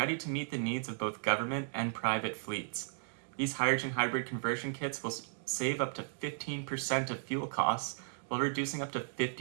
to meet the needs of both government and private fleets. These hydrogen hybrid conversion kits will save up to 15% of fuel costs while reducing up to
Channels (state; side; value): silent; left; digital silence